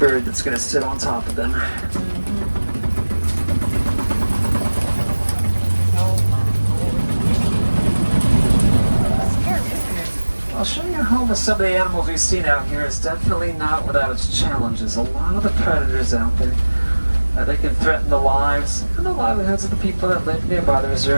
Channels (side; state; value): both; inverted; correlation -1.00